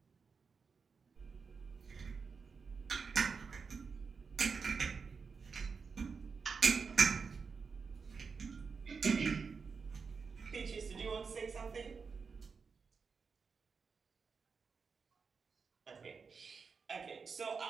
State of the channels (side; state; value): left; quieter; 5.3 dB